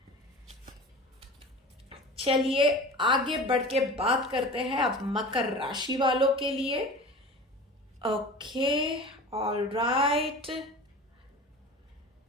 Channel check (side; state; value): both; normal; correlation 0.36